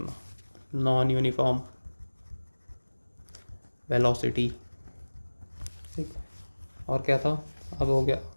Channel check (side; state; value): both; inverted; correlation -1.00